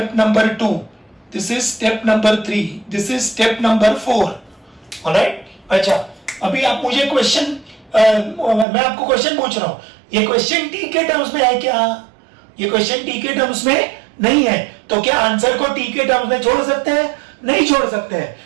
number 2. This is step number 3. This is step number 4. Alright? अच्छा, अभी आप मुझे क्वेश्चन मैं आपको क्वेश्चन पूछ रहा हूं, ये क्वेश्चन टी के टर्म्स में है क्या? ये क्वेश्चन टी के टर्म्स में नहीं है, तो क्या आंसर को टी के टर्म्स में छोड़ सकते हैं? नहीं छोड़ सकते हैं.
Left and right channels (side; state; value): left; drops out; at 8.7 s